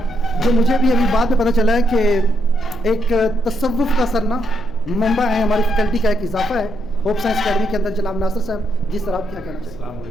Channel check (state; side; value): noise; left; hum, 18 dB below the sound